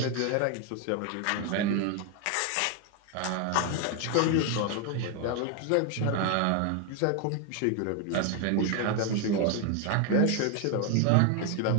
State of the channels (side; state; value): both; different; correlation 0.01